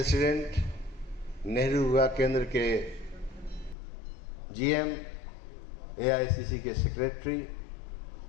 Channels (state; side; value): drops out; right; at 3.8 s